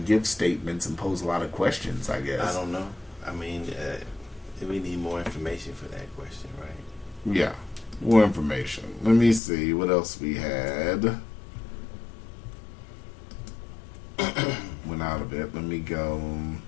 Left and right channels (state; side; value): drops out; right; at 9.4 s